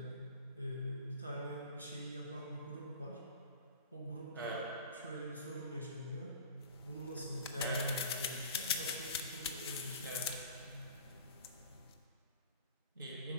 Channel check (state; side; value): inverted; both; correlation -0.41